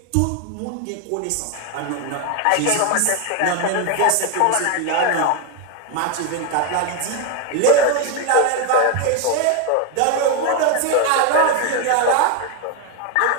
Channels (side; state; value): both; different; correlation 0.02